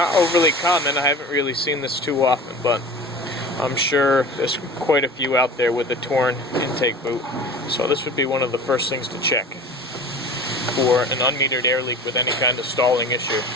overly common. I haven't really seen this too often, but I'm sure there's quite a few out there with a torn intake boot. So this would be one of the first things to check for an unmetered air leak with any kind of stalling issue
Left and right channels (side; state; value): both; normal; correlation 0.38